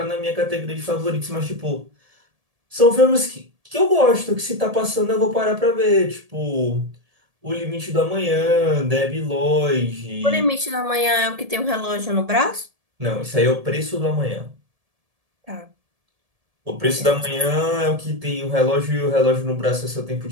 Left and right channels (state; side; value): late; left; 1.7 ms